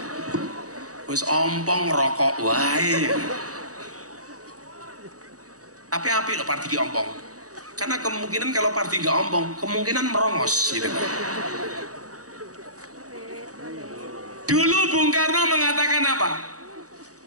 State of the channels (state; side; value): late; left; 0.66 ms